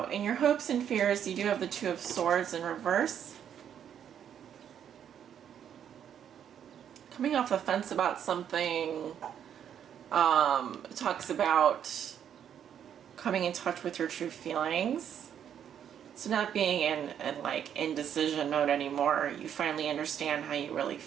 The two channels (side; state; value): left; quieter; 9.1 dB